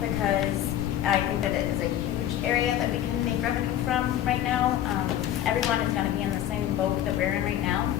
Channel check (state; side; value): quieter; right; 11.6 dB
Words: I think that it is a huge area that we can make revenue from right now. Everyone is going to be in the same boat that we're in right now